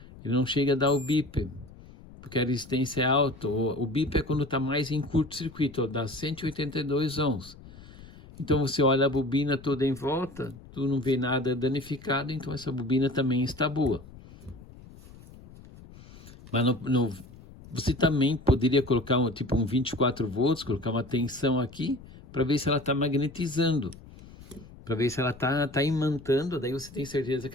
ele não chega a dar o bip, porque a resistência é alta. O bip é quando está mais em curto-circuito, dá 182 ohms. Então você olha a bobina toda em volta, tu não vê nada danificado, então essa bobina também está boa. Mas você também poderia colocar um 24 volts, colocar uma tensão aqui, para ver se ela está magnetizando, para ver se ela está imantando, daí você tem certeza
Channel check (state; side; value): noise; left; rumble, 19 dB below the sound